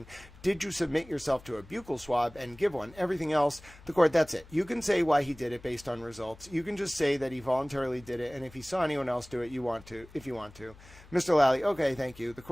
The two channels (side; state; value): left; noise; hum, 22 dB below the sound